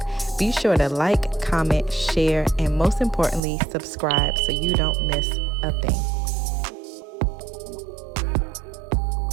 Be sure to like, comment, share, and most importantly, subscribe so you don't miss a thing.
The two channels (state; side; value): drops out; left; at 3.4 s